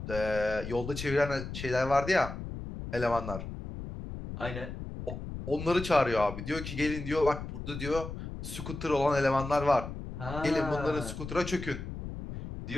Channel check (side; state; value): left; noise; rumble, 8 dB below the sound